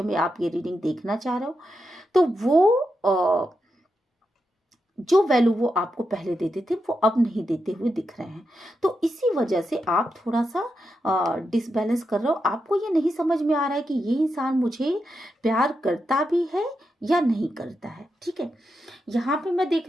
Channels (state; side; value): normal; both; correlation 0.86